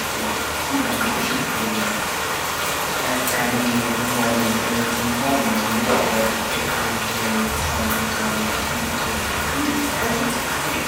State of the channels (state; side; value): identical; both; correlation 1.00